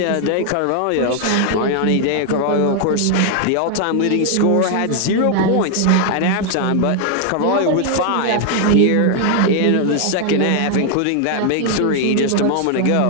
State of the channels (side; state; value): both; different; correlation 0.00